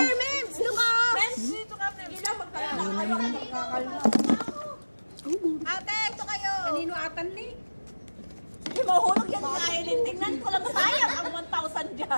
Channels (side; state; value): both; inverted; correlation -1.00